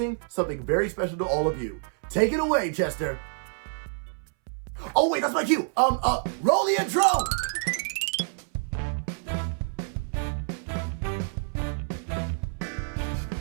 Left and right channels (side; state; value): left; silent; 60 dB below the other